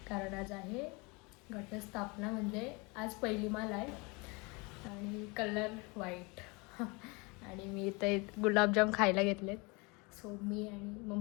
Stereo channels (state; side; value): quieter; right; 27.9 dB